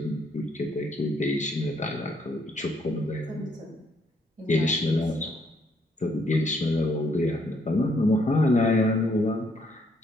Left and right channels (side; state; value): both; normal; correlation 0.70